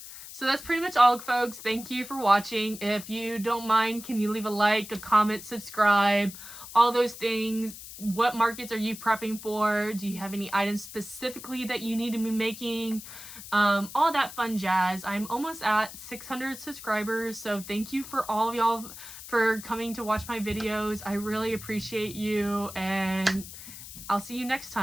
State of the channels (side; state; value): left; noise; hiss, 13 dB below the sound